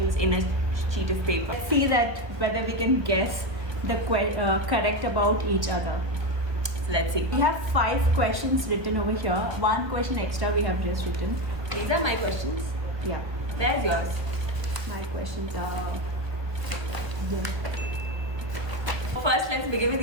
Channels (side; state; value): left; late; 1.2 ms